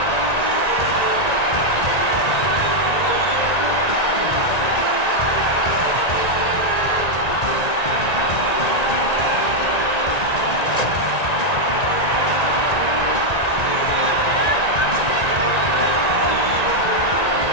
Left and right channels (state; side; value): late; right; 1.9 ms